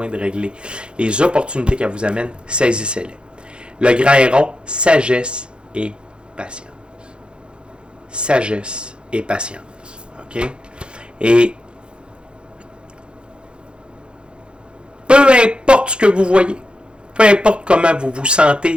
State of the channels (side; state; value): left; late; 0.054 ms